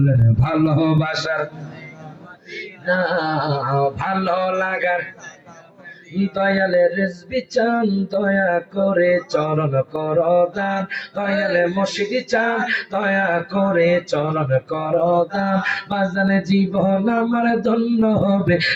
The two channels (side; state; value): both; identical; correlation 1.00